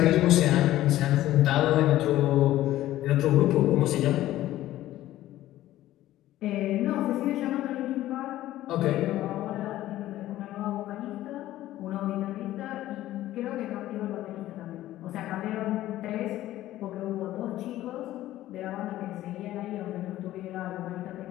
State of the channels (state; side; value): quieter; right; 14.6 dB